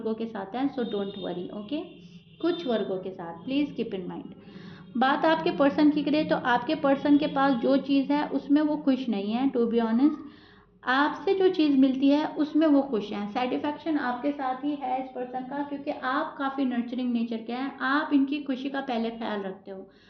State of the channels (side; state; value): both; identical; correlation 1.00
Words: के साथ है। So don't worry. ओके, कुछ वर्गों के साथ प्लीज़ कीप इन माइंड। बात आपके पर्सन की करें तो आपके पर्सन के पास जो चीज़ है उसमें वो खुश नहीं है, टू बी ऑनेस्ट। आपसे जो चीज़ मिलती है उसमें वो खुश हैं। सेटिस्फैक्शन आपके साथ ही है इस पर्सन का, क्योंकि आप काफ़ी नर्चरिंग नेचर के हैं, आप इनकी खुशी का पहले ख्याल रखते हो,